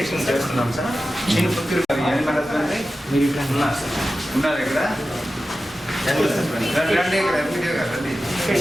చేస్తున్నాం సార్. నేను మీరు ఇక్కడ ఉన్నారు ఇక్కడ రండి.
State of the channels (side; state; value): both; normal; correlation 0.93